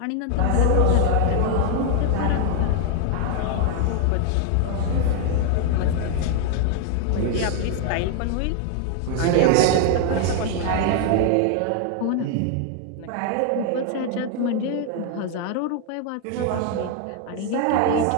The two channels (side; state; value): both; different; correlation 0.00